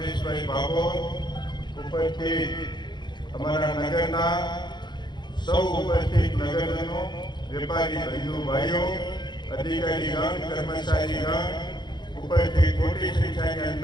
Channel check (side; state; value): right; late; 0.21 ms